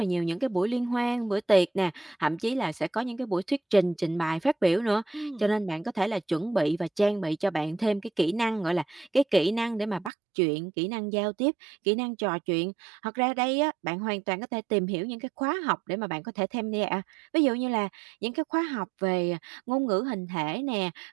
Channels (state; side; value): drops out; left; at 10.1 s